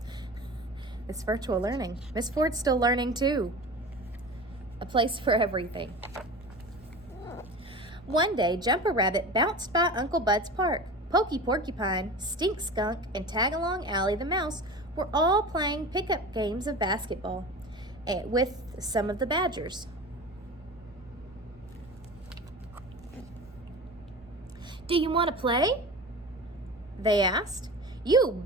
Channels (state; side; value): normal; both; correlation 0.34